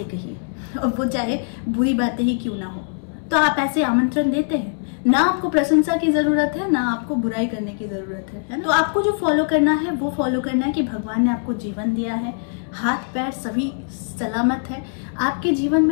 कहिए, और वो चाहे बुरी बातें ही क्यों ना हो। तो आप ऐसे आमंत्रण देते हैं। ना आपको प्रशंसा की जरूरत है, ना आपको बुराई करने की जरूरत है ना? तो आपको जो फॉलो करना है वो फॉलो करना है कि भगवान ने आपको जीवन दिया है, हाथ पैर सभी सलामत है। आपके जीवन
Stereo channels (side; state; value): right; silent; digital silence